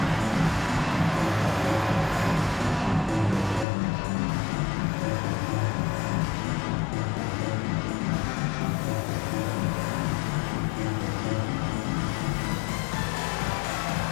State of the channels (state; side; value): drops out; right; at 3.7 s